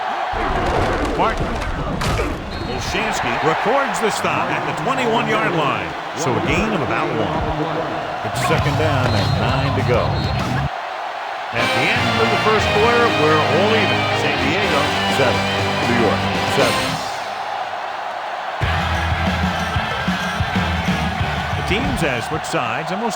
Martin. Olshansky records the stop at the 21-yard line. So a gain of about 1. It's 2nd down and 9 to go. At the end of the first quarter, we're all even. San Diego, 7. New York, 7. The teams have switched sides, and we'll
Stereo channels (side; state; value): both; identical; correlation 1.00